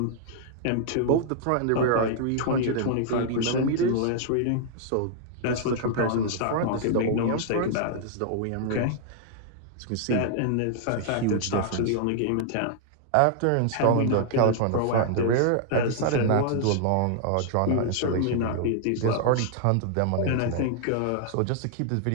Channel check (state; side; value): different; both; correlation -0.01